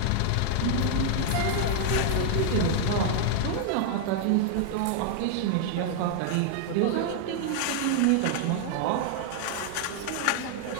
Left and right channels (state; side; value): different; both; correlation 0.00